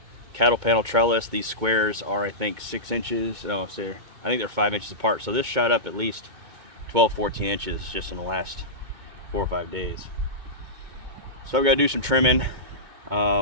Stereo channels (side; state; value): left; late; 2.2 ms